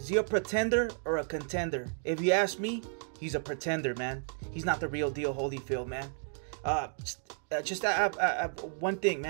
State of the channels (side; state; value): left; silent; 56 dB below the other